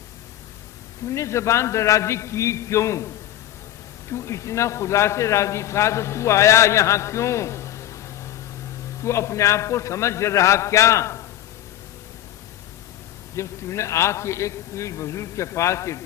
تم نے زبان درازی کی کیوں؟ تو اتنا خدا سے راضی تھا تو تو آیا یہاں کیوں؟ تو اپنے آپ کو سمجھ رہا کیا؟ جب تم نے آ کے ایک بزرگ کے پاس یہ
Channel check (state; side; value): quieter; right; 12.9 dB